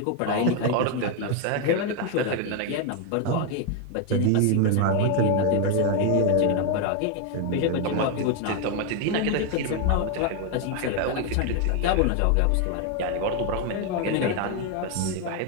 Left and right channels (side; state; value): both; different; correlation 0.01